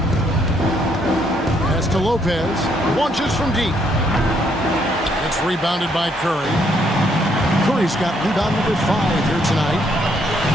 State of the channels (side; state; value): both; normal; correlation 0.71